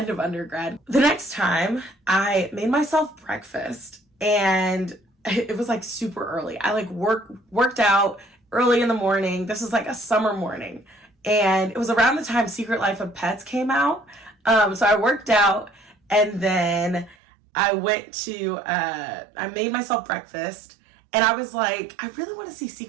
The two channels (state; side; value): drops out; left; at 17.2 s